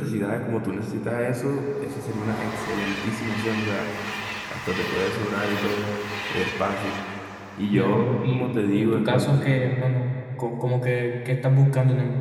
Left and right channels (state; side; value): identical; both; correlation 1.00